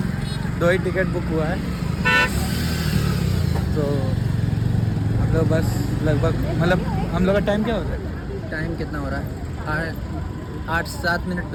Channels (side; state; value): both; identical; correlation 1.00